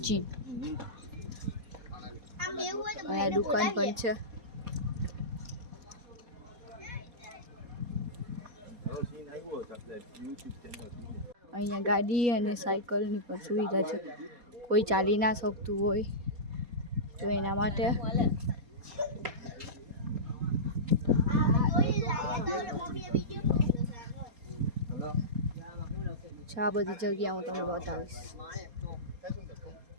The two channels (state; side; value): late; left; 4.2 ms